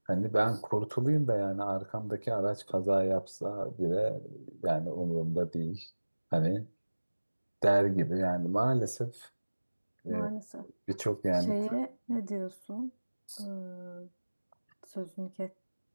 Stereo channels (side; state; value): both; inverted; correlation -1.00